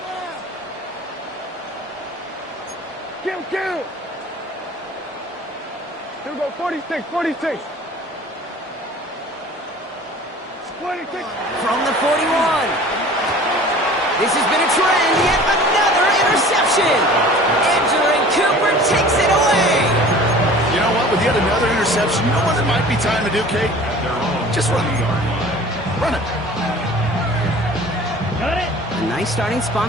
Kill. Here we go. 46. From the 41. This has been a trend. Yet another interception. Andrew Cooper takes it away. You know what? With yet another interception, you know what it might be time to do, Kate? Just run it. Run it. A nice starting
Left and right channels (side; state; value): both; normal; correlation 0.45